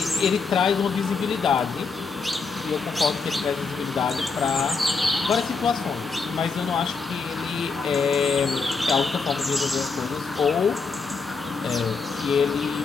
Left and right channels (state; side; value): quieter; right; 4.6 dB